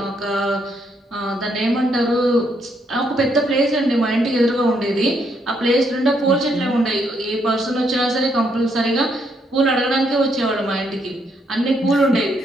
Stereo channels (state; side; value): normal; both; correlation 0.74